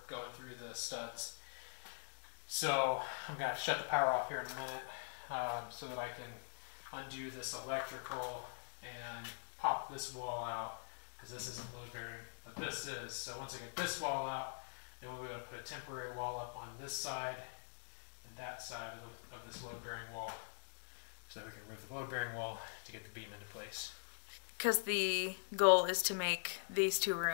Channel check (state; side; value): silent; right; digital silence